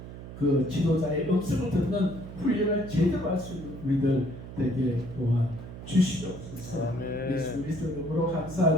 그 지도자의 음성을 듣는 훈련을 제대로 할 수 있는 우리들 되게 도와 주시옵소서. 예수 그리스도 이름으로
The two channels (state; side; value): noise; right; hum, 12 dB below the sound